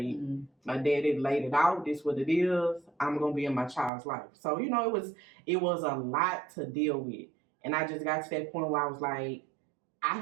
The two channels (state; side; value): drops out; left; at 3.9 s